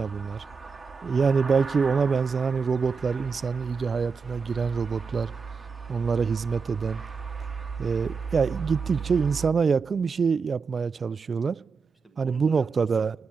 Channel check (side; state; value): left; quieter; 5.2 dB